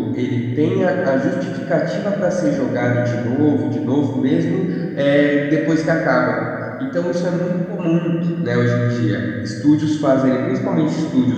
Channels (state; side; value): identical; both; correlation 1.00